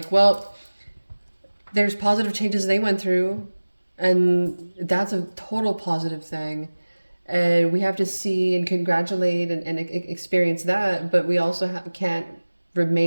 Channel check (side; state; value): both; inverted; correlation -1.00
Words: well, there's positive changes they went through, and that's a total positive thing. And we have to see and congratulate and experience that, but we also can't